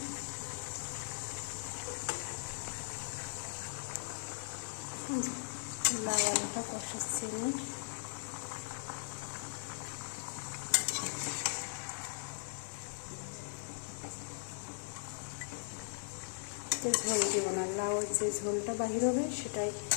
লাউ আলুটা কষাচ্ছি আমি। ঝোল দিব না, লাউয়ের যে ঝোলটা বাহির হবে সেটাই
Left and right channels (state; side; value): silent; right; digital silence